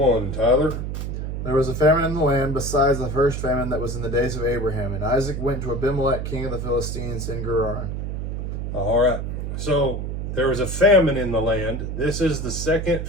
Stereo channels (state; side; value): noise; right; hum, 4 dB below the sound